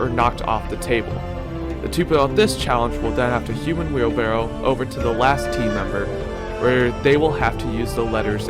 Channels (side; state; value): both; identical; correlation 1.00